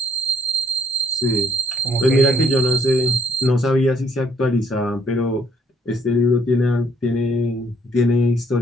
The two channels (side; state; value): both; normal; correlation 0.66